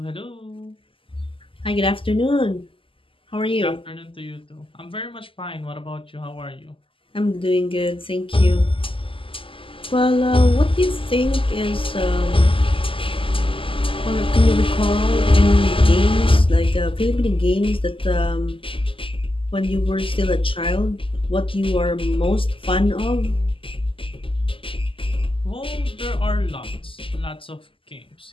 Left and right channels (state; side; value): late; right; 0.25 ms